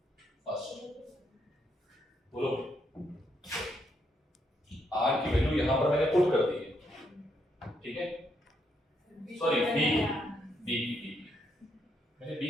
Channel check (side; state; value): both; normal; correlation 0.76